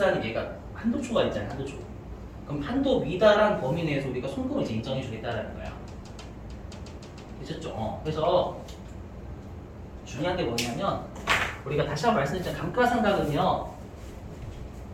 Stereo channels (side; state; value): both; identical; correlation 1.00